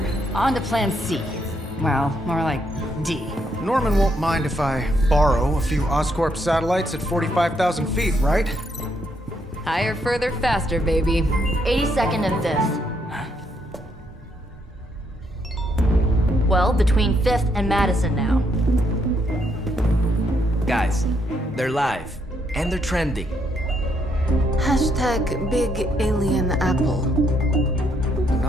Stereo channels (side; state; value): both; normal; correlation 0.74